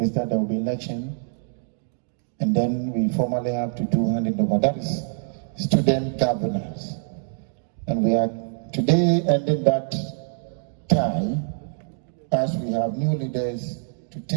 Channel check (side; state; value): left; silent; digital silence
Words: there will be election, and then we formally have to do handing over. That is student governance. And we are today ending that tie as we have new leaders to